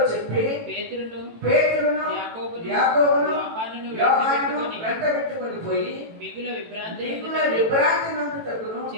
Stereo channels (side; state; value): left; late; 18 ms